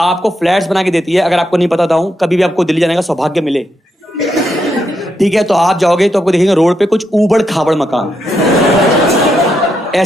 फ्लैट्स बना के देती है। अगर आपको नहीं पता था, कभी भी आपको दिल्ली जाने का सौभाग्य मिले, ठीक है, तो आप जाओगे तो आपको देखेंगे रोड पे कुछ ऊबड़ खाबड़ मकान,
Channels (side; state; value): both; normal; correlation 0.81